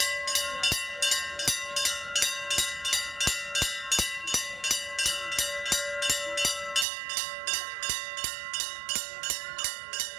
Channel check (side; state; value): left; drops out; at 6.9 s